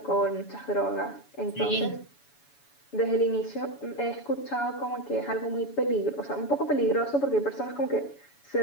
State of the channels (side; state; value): right; late; 7.1 ms